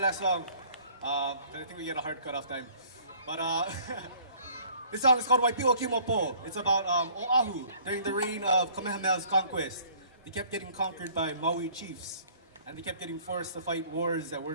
song. I think we get a hard cut-off time. But this song is called Waipiwa Kimopo. It's about Oahu during the reign of Kamehameha's conquest. They kept getting conquered by Maui chiefs, and they kept getting forced to fight wars that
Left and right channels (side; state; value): both; inverted; correlation -0.55